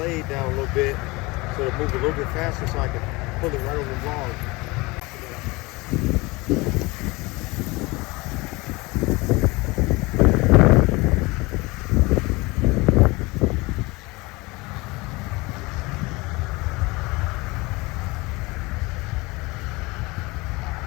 down a little bit so it'll move a little bit faster so I can pull it right over the log.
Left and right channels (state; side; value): quieter; right; 23.7 dB